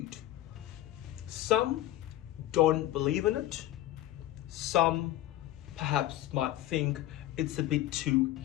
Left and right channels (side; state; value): right; quieter; 14.3 dB